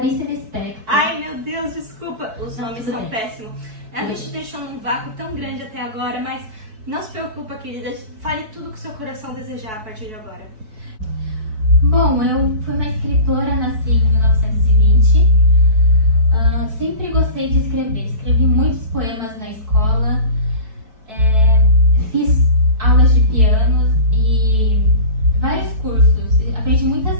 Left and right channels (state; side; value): late; left; 4.6 ms